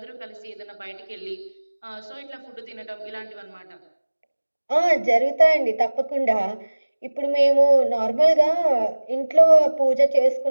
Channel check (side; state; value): both; inverted; correlation -1.00